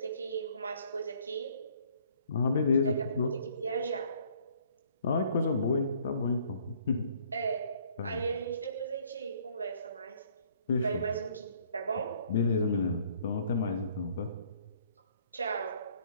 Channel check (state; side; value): inverted; both; correlation -0.61